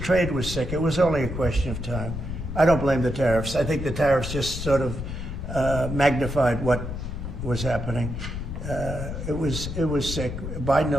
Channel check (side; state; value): left; noise; rumble, 6 dB below the sound